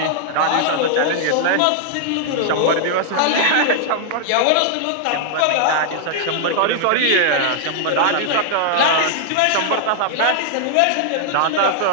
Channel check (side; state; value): both; different; correlation 0.00